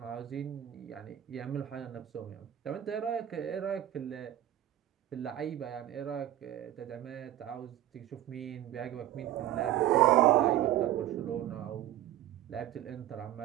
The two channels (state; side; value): quieter; left; 12.9 dB